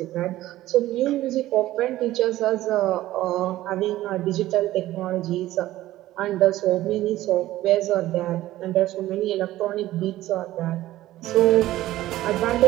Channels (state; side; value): quieter; left; 15.3 dB